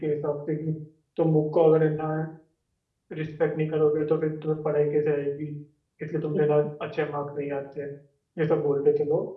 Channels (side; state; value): both; identical; correlation 1.00